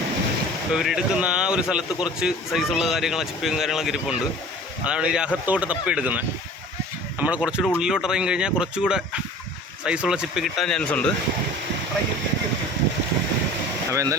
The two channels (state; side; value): normal; both; correlation 0.43